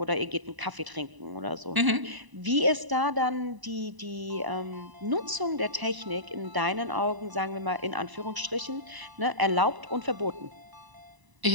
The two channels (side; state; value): left; late; 1.0 ms